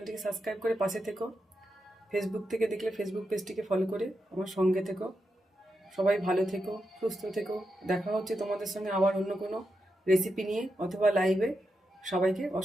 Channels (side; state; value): both; normal; correlation 0.86